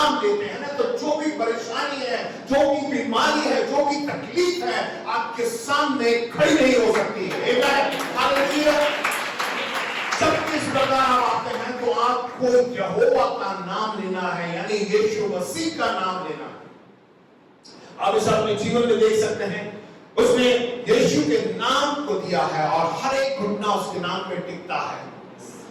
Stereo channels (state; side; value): identical; both; correlation 1.00